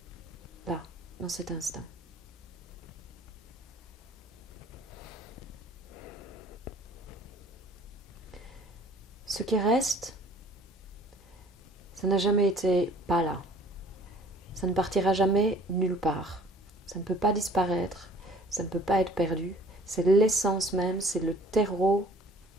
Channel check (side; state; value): both; normal; correlation 0.53